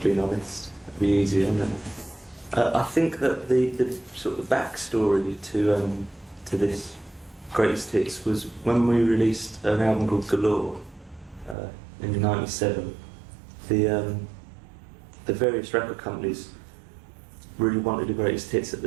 being honest. It'd be easier, isn't it? I think that the sort of backstory to this Greatest Hits was when we released an album called Galore in '97. The various record companies really wanted the Greatest Hits at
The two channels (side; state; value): left; drops out; at 11.6 s